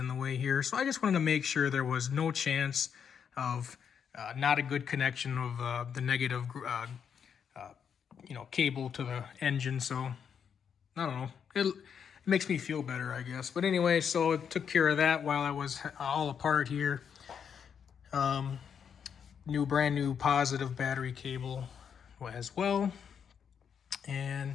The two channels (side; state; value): right; quieter; 7.4 dB